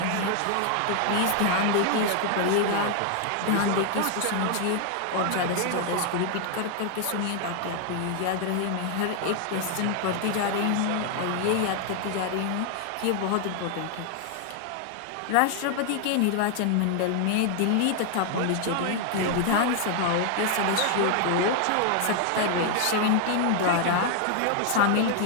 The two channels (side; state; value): both; different; correlation 0.00